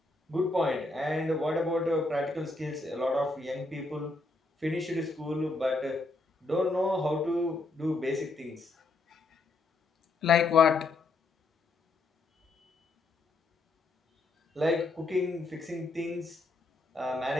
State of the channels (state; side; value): quieter; right; 3.2 dB